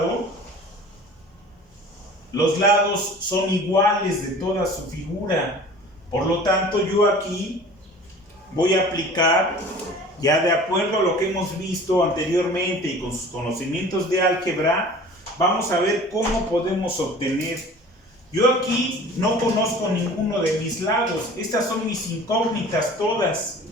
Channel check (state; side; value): normal; both; correlation 0.44